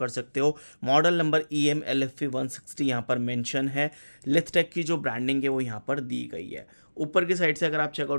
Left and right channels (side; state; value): both; inverted; correlation -1.00